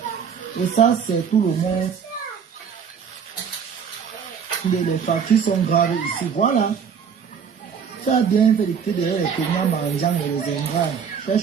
Et ça, c'est tout le monde. Les factures sont graves ici. Voilà. Ça a bien fait d'écouter derrière les fainéants mangeants et les ingrats.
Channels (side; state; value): left; quieter; 6.9 dB